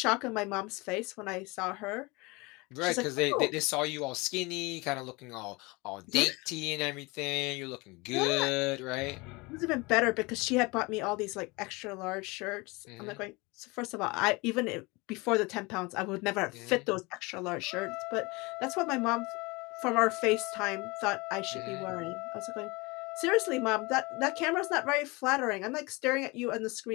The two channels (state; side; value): quieter; right; 25.2 dB